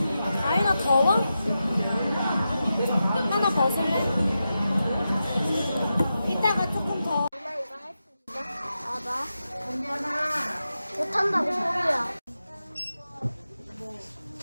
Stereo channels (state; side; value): inverted; both; correlation -0.90